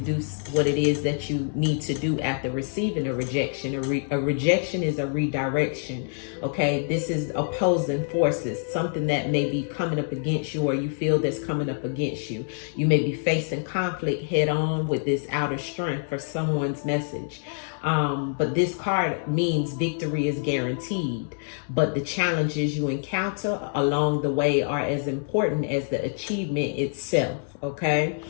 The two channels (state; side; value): silent; right; 61 dB below the other